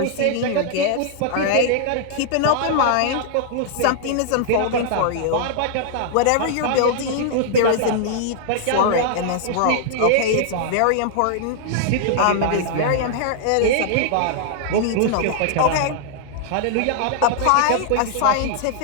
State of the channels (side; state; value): both; different; correlation -0.01